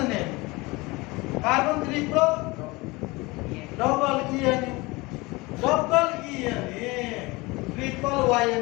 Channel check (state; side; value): quieter; right; 23.5 dB